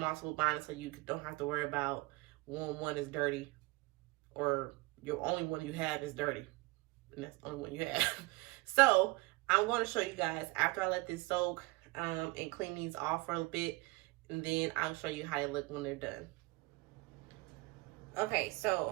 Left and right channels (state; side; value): quieter; left; 23.6 dB